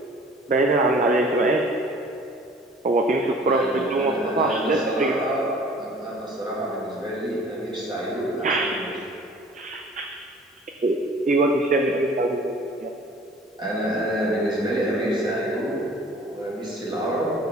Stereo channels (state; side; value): normal; both; correlation 0.49